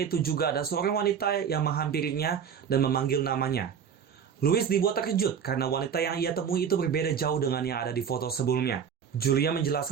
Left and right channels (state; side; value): quieter; left; 7.5 dB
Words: juga ada seorang wanita yang menghampirinya dan memanggil namanya. Louis dibuat terkejut karena wanita yang ia temui itu berbeda jauh dengan yang ada di foto sebelumnya. Julia